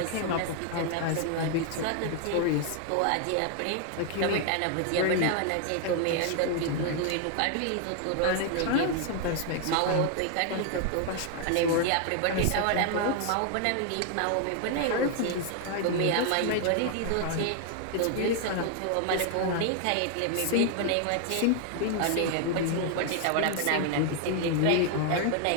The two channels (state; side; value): different; both; correlation 0.00